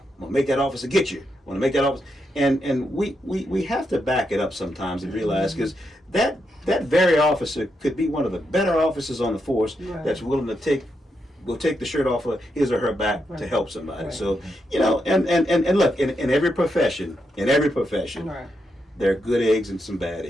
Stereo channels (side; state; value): both; normal; correlation 0.83